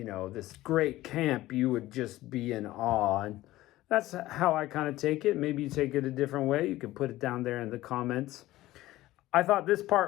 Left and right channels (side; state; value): right; quieter; 16.4 dB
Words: this great camp, you would just be in awe. And that's how I kind of take it. Maybe you take it a different way. You can put it down there in the comments. I thought this